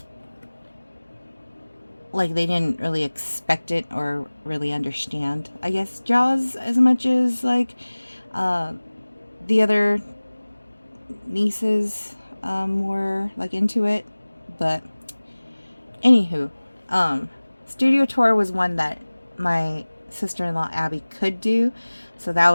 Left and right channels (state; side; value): inverted; both; correlation -1.00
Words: like they didn't really expect it or really understand, I guess, Jaws as much as like the other nieces were like into it. But anywho, studio tour was one that my sister-in-law Abby could do, so that